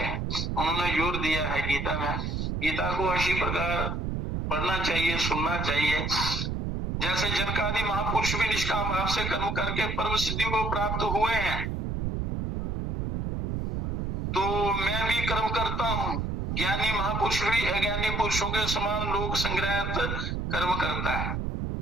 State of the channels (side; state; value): right; noise; rumble, 2 dB below the sound